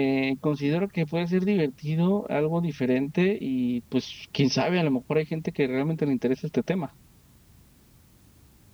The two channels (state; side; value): identical; both; correlation 1.00